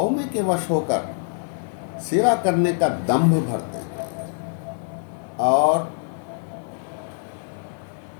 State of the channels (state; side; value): silent; right; digital silence